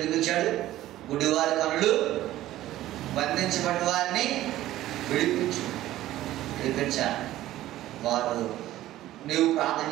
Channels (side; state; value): left; quieter; 14.6 dB